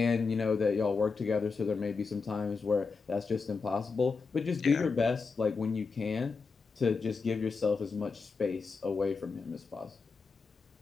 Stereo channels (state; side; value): quieter; right; 4.7 dB